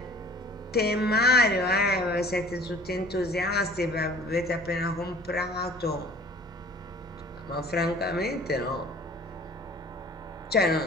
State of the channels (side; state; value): both; normal; correlation 0.48